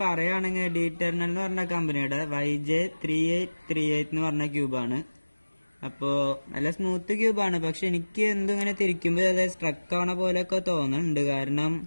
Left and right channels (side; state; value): both; inverted; correlation -1.00